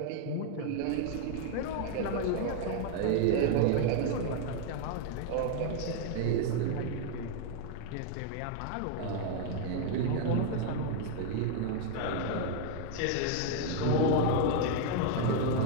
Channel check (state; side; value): different; both; correlation 0.00